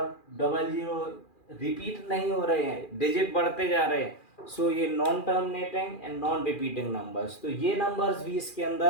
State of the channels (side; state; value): right; late; 2.4 ms